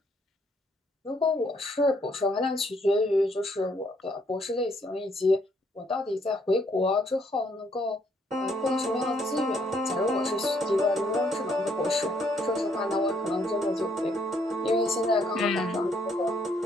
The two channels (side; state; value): both; normal; correlation 0.69